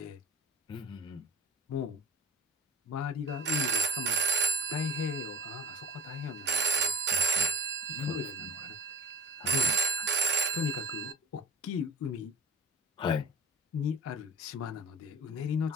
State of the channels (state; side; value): normal; both; correlation 0.42